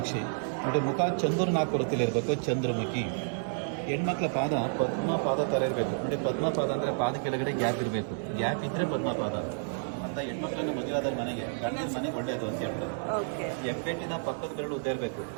ನೋಡಿ, ಮುಖ ಚಂದ್ರನಾಕೃತಿಲಿ ಇರಬೇಕು, ಚಂದ್ರಮುಖಿ. ಹೆಣ್ಮಕ್ಳ ಪಾದ ಪದ್ಮಪಾದ ಥರ ಇರಬೇಕು. ನೋಡಿ, ಪದ್ಮಪಾದ ಅಂದರೆ ಪಾದ ಕೆಳಗಡೆ ಗ್ಯಾಪ್ ಇರಬೇಕು. ಗ್ಯಾಪ್ ಇದ್ದರೆ ಪದ್ಮಪಾದ ಅಂತ. ಹೆಣ್ಮಕ್ಳನ್ನ ಮದುವೆಯಾದ ಮನೆಗೆ ಗಂಡಿನ ಮನೆಗೆ ಒಳ್ಳೆಯದು ಅಂತ ಹೇಳ್ತಾರೆ. ಹೆಬ್ಬೆಟ್ಟಿನ ಪಕ್ಕದ ಬೆರಳು ಉದ್ದ ಇರಬೇಕು.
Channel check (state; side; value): silent; left; digital silence